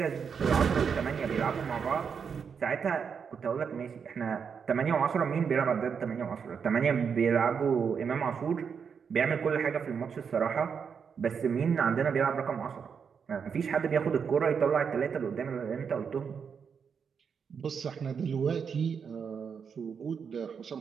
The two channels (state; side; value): quieter; left; 6.5 dB